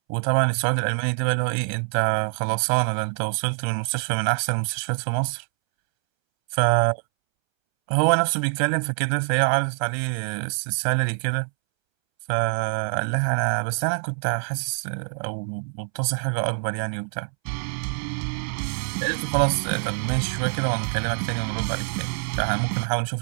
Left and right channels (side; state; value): left; silent; 62 dB below the other